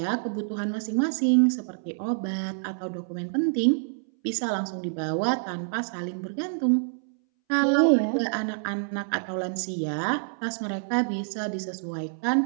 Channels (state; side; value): silent; left; 60 dB below the other